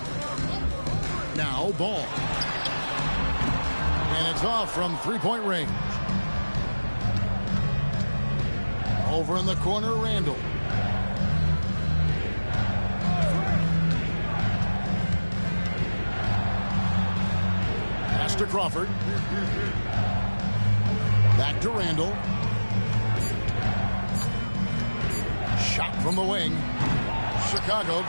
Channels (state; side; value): inverted; both; correlation -1.00